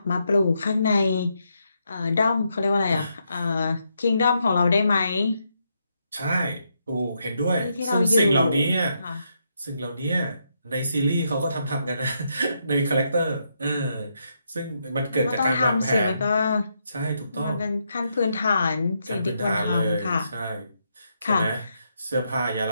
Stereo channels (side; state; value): both; inverted; correlation -0.79